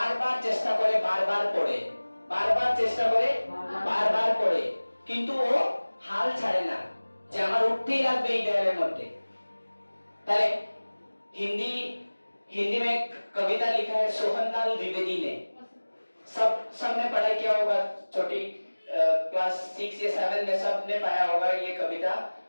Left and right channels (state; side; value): inverted; both; correlation -1.00